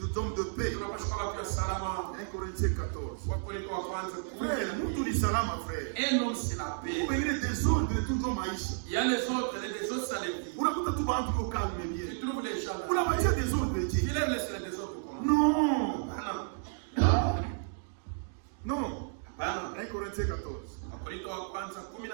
hommes de paix. tunapaswa kuwa watu wa salama. 1 Corinthiens 14. Wakorintho wa kwanza Frère, 14. mtu ni salama frère. Un homme c'est la paix. Pengine desordre tuko maisha. Il y a les autres ça les vit. Unakuta tu bantu ko calme Tu bien. trouves les gens là. Unapatia desordre Tu je. les laisses les autres comment? Non. Hapana. Non. Hapana. 1 Corinthiens 14. Wakorintho wa kwanza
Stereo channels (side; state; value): left; silent; digital silence